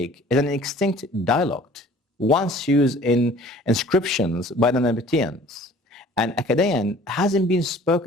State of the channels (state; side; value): normal; both; correlation 0.50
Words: is an extinct dialect, once used in inscriptions by the Nabateans, and Akkadian hasn't been